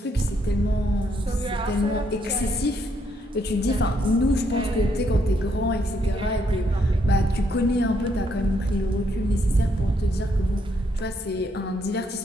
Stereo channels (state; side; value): normal; both; correlation 0.74